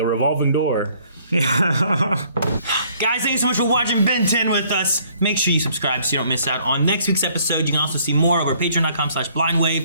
revolving door. Guys, thank you so much for watching Ben 10 with us. Make sure you subscribe so you don't miss out on next week's episode. You can also see more over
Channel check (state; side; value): inverted; both; correlation -0.62